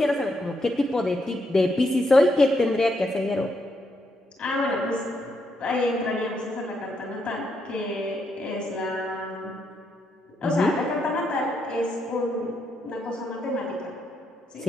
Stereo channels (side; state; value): both; normal; correlation 0.79